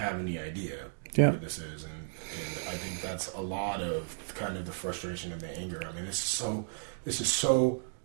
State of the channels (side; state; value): left; silent; digital silence